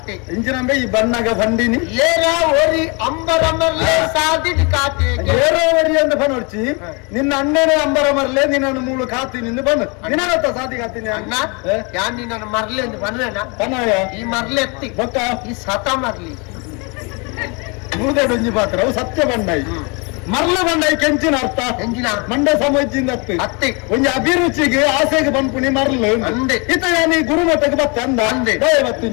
ಇಂಜಿನಂಬೆ ಈ ಬಣ್ಣಗ ಬಂದಿನಿ ಏರಾ ಓರಿ ಅಂಬರಮರ್ಲೆ ಸಾದಿದ್ ಕಾತೆ ಏರೋ ಓರಿ ಅಂತ ಬನೋಡ್ಚಿ ನಿನ್ನ ಅಣ್ಣನೇ ಅಂಬರಮರ್ಲೆ ನಿನ್ನನ್ನು ಮೂಳು ಕಾತಿ ನಿಂದು ಬಂದು ನಿನ್ನ ಸಾದಿ ಕಾತೀನಿ ಅಣ್ಣ ಯಾನ್ ನಿನ್ನ ಮರ್ಲೆ ಅಂತ ಬನ್ವೇನ ಬನ್ನಯ ಈ ಮರ್ಲೆ ಎತ್ತಿ ಗೊತ್ತ ಈ ಸತ ಮರ್ಲಿ ಮೂದೊಂಜಿ ಪಾತ್ರ ಅವು ಸತ್ಯ ಬಂಡಾಯಿ ಮರ್ಲ ಬಂಡಾಯಿ ಕೆಂಚಿನ ಅರ್ಥ ಎಂಜಿನ ಮಂಡ ಸಮಜ್ಜಿಂದ ಅತ್ತಿ ಒಂಜಿ ಅಭಿರುಚಿಗೆ ಆಸೆಗೆ ಬಂದ್ಪುಣಿ ಮರ್ಲು ಅಂದೆ ಈತ ಯಾನಿ ಗುರುಮಠಕ್ಕೆ ಬತ್ತ ಅಂದ ಅಂದೆ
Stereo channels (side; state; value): right; quieter; 31.5 dB